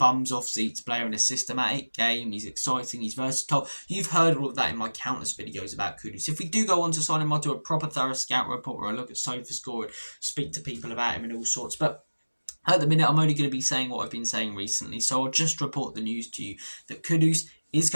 off seats player in a systematic game. He's exciting. He's versatile. You've heard all of that in my countless videos about Kudus. If we do go on to sign him, I'll do a proper thorough scout report where I look at SofaScore and speak to people about him and all sorts. But at the minute, I'm only going to be saying what I've been saying recently. So I'll just report the news to you that Kudus is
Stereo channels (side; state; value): both; inverted; correlation -1.00